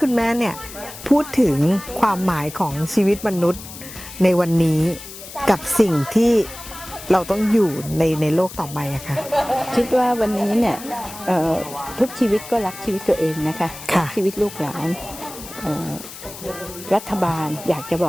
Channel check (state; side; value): noise; left; hiss, 14 dB below the sound